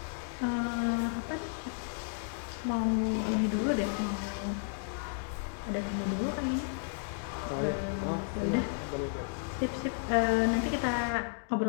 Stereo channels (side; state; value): right; silent; digital silence